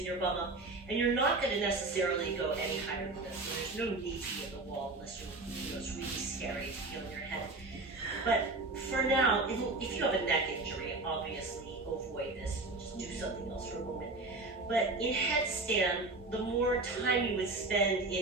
your bum up. And you're not going to necessarily go any higher than this. So there's no need to be at the wall unless it's really scary to feel in your head. But for now, if you have a neck injury, obviously avoid this. Just do something else for a moment. But in headstand, the more time you would spend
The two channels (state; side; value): quieter; left; 3.2 dB